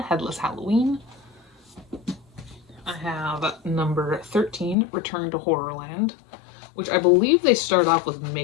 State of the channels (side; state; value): right; drops out; at 4.8 s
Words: Headless Halloween. I have number 13, Return to Horrorland, which I believe they start off with